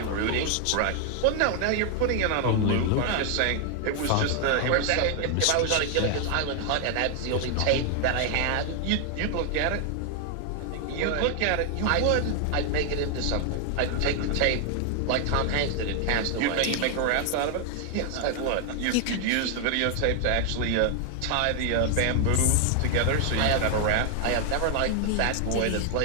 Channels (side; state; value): both; different; correlation 0.00